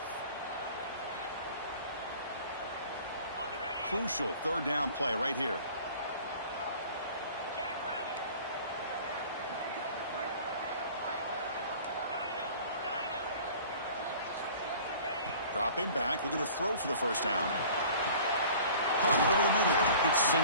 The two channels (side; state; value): both; inverted; correlation -0.47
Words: Crucial third down play right here. Dropping back, looking to throw for the first down. Pump over the middle. It's